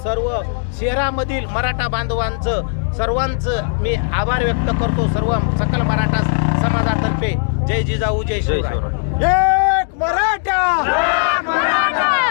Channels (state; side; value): silent; right; digital silence